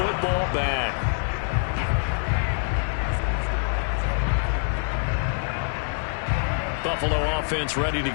back. Buffalo offense ready to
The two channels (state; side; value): silent; right; 62 dB below the other